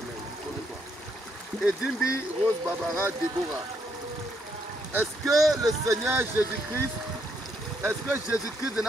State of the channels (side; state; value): both; normal; correlation 0.74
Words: Connais-toi. Ezimbi, Rose Barbara Déborah. Est-ce que le Seigneur Jésus-Christ, est-ce que Jésus-Christ de